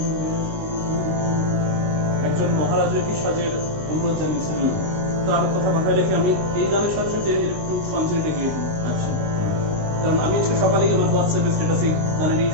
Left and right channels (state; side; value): late; left; 19 ms